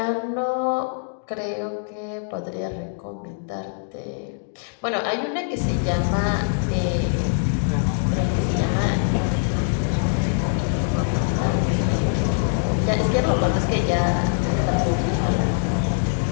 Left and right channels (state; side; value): silent; right; digital silence